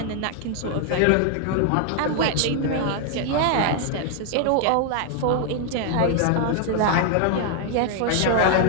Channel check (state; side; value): different; both; correlation 0.00